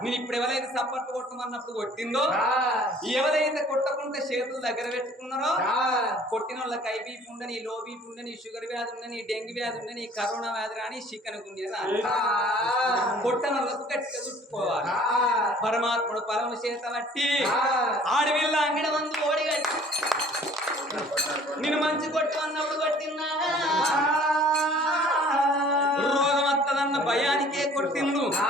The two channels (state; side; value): normal; both; correlation 0.53